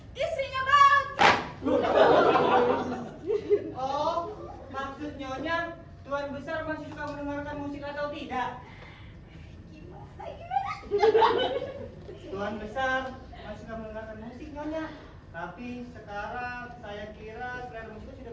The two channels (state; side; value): identical; both; correlation 1.00